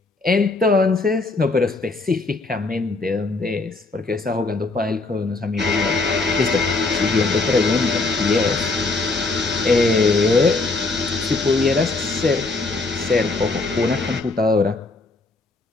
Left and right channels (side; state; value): right; quieter; 3.5 dB